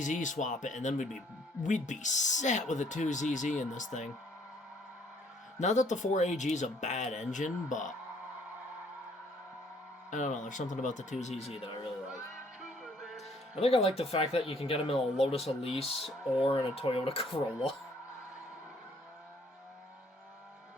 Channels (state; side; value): normal; both; correlation 0.63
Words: swap it, and then we'd be set with a 2ZZ in this thing. Not that the 4AG is a bad engine, but I don't know. There's something about the 2ZZ that I really like. I think I like the fact that you can get them in a Lotus Elise or in a Toyota Corolla.